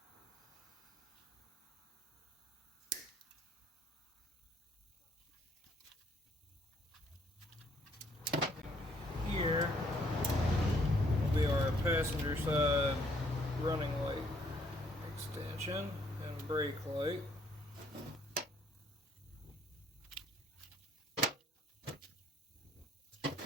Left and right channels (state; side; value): normal; both; correlation 0.66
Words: Here will be our passenger side running light extension and brake light.